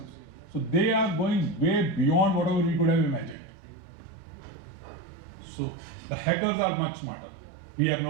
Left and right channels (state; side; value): drops out; left; at 3.4 s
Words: So they are going way beyond whatever we could have imagined. So the hackers are much smarter. We are